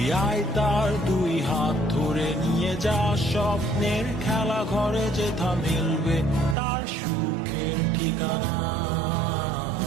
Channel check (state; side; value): drops out; left; at 6.6 s